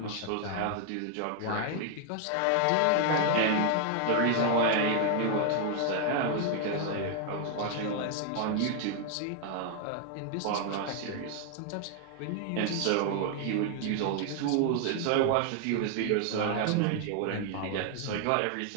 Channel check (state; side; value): different; both; correlation 0.00